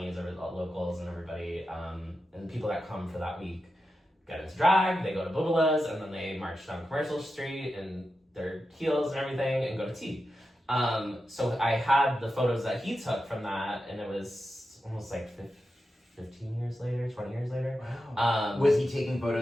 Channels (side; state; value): both; normal; correlation 0.90